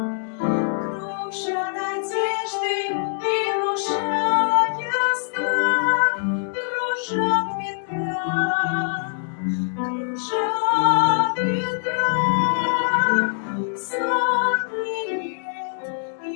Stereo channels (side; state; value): right; silent; digital silence